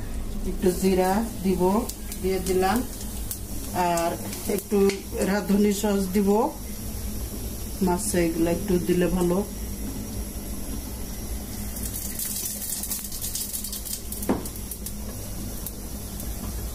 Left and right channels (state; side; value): identical; both; correlation 1.00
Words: একটু জিরা দিব, দিয়ে দিলাম, আর একটু রাঁধুনি সস দিব। মাছে এগুলো একটু দিলে ভালো।